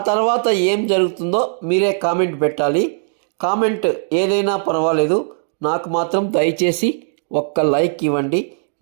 తర్వాత ఏం జరుగుతుందో మీరే కామెంట్ పెట్టాలి. కామెంట్ ఏదైనా పర్వాలేదు, నాకు మాత్రం దయచేసి ఒక్క లైక్ ఇవ్వండి.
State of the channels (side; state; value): left; silent; digital silence